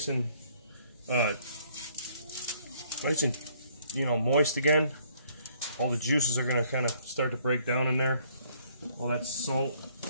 and moist again. All the juices are going to kind of start to break down in there. All that salt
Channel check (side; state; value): both; inverted; correlation -0.63